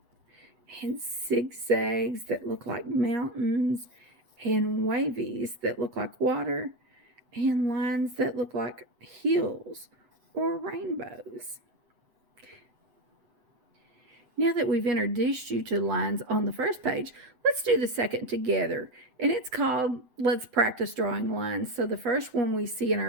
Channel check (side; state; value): left; late; 7.9 ms